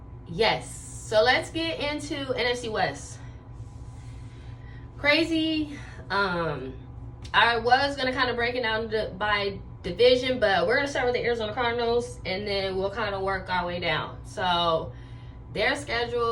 yes, so let's get into NFC West. Crazy. I was gonna kind of break it down by division, but we're gonna start with the Arizona Cardinals and then we'll kind of work our way down. So their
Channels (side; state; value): both; identical; correlation 1.00